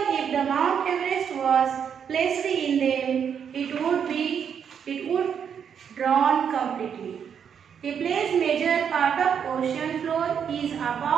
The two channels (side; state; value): left; quieter; 7.7 dB